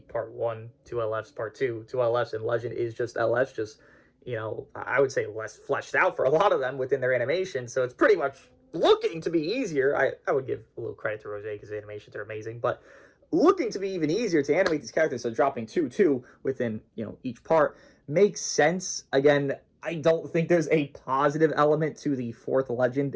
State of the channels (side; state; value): both; identical; correlation 1.00